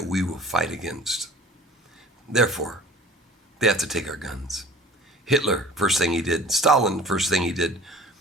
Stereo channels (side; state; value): both; normal; correlation 0.45